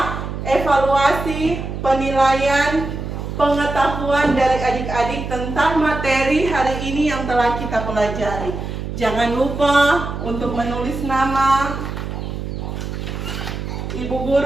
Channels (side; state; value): right; noise; hum, 6 dB below the sound